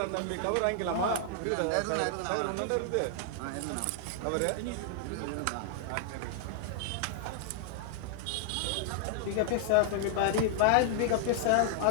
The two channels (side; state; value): both; different; correlation -0.01